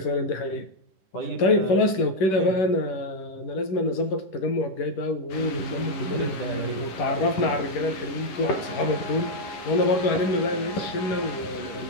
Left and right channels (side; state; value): right; late; 11 ms